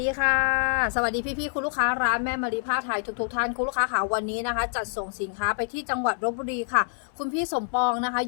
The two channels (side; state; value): right; silent; 61 dB below the other